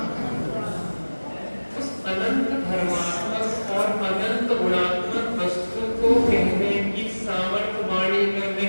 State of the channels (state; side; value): inverted; both; correlation -1.00